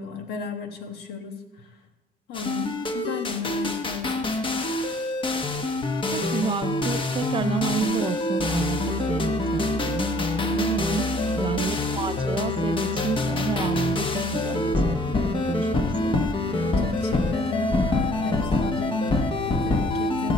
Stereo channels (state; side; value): normal; both; correlation 0.57